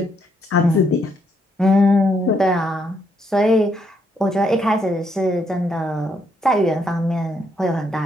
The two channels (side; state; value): both; normal; correlation 0.74